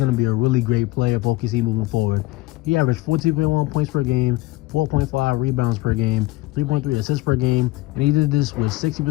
to be a really great player for OKC moving forward. He averaged 14.1 points per game, 4.5 rebounds per game, 3.3 assists per game, and he did this with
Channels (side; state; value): right; quieter; 19.0 dB